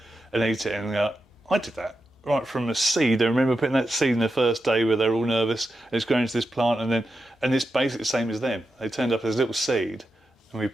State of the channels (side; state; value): both; normal; correlation 0.88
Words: and eat it, and go, I did that right from a seed. I remember putting that seed in the first day where they're all nervous, and it's grown into this plant, and it's basically the same as them. They turned up as a little seed, and we